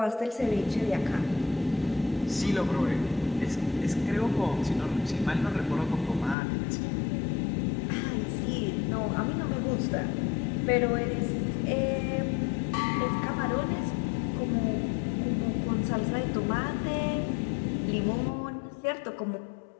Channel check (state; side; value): drops out; right; at 6.4 s